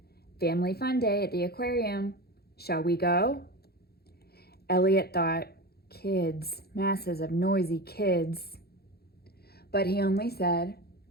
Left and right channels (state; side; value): late; right; 0.46 ms